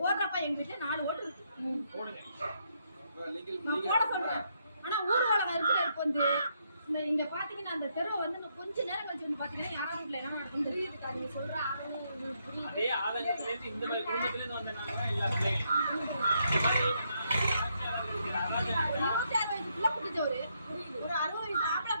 போடுறப்ப எங்க வீட்டுல 4 ஓட்டு இருக்கு. நான் போட சொல்றேன். ஆனா ஊர்வலம் இருக்கிற வந்து இங்க பாத்தீங்கன்னா அந்த தெருவை வந்து கொஞ்ச நேரம் கழிச்சு வந்து பாத்தீங்கன்னா யாராவது வீட்டுல என்ன நடக்கும் தெரியுதுக்கா. நீங்க சொல்ற அதே ஆதங்கத்துல இருந்து இந்த மாதிரி குடும்பத்துல இருந்து வந்தனால எல்லா குட்டிச்சவரு, ஒரு 60 வயசு ஆம்பளை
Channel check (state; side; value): inverted; both; correlation -0.76